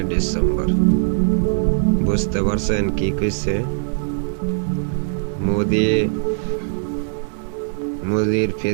ডিসেম্বর। বুঝতে পারছেন কি কইছে? মোদির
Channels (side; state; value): left; silent; digital silence